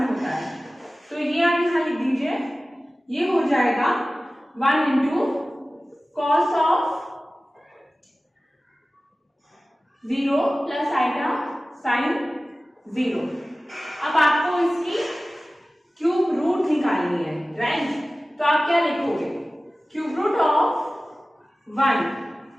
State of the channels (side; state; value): both; normal; correlation 0.97